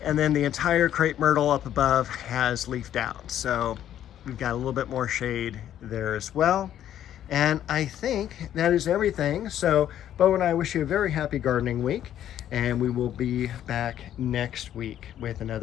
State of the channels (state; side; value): quieter; right; 11.1 dB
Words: And then the entire crepe myrtle up above has leafed out. So we've got a little bit more shade there as well. And I think that is everything. So Bo and I wish you a very happy gardening week, and we will be back next week with